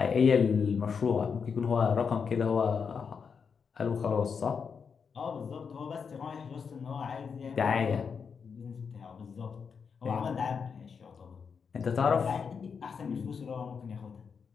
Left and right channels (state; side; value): quieter; right; 6.1 dB